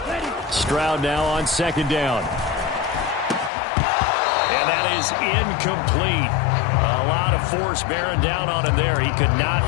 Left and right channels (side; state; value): right; drops out; at 3.5 s